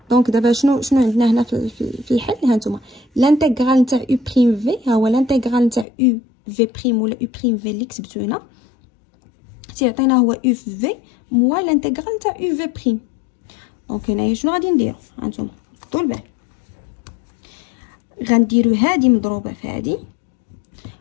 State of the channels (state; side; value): drops out; right; at 5.9 s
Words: دونك دابا شنو عندنا هنا في الحل؟ ها نتوما الانتيغرال نتاع يو بريم في ها هو الانتيغرال نتاع يو في بريم ولا يو بريم في اللي كتبتو هنا تيعطينا هو يو في موا الانتيغرال نتاع يو في بريم. دونك هنايا شنو غادي نديرو؟ ها نتوما خدوا البال، غنديرو هادي مضروبه في هادي